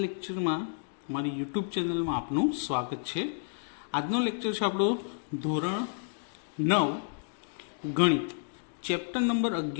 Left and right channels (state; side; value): silent; right; digital silence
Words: લેક્ચરમાં મારી યુટ્યુબ ચેનલમાં આપનું સ્વાગત છે. આજનો લેક્ચર છે આપણો ધોરણ 9 ગણિત, ચેપ્ટર નંબર